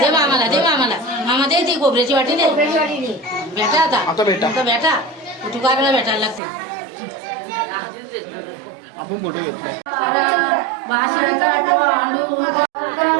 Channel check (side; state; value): left; drops out; at 6.4 s